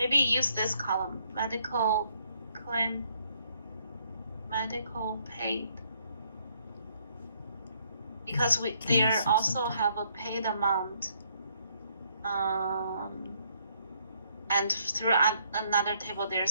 use this column, medical claim, medical paid, because they also have a paid amount, and through another table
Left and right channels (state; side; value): inverted; both; correlation -0.70